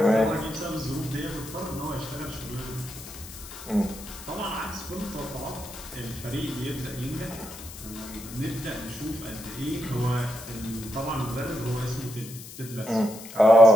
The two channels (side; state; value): left; noise; hiss, 14 dB below the sound